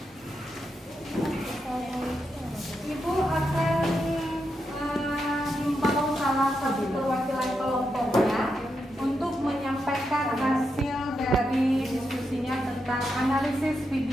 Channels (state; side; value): normal; both; correlation 0.85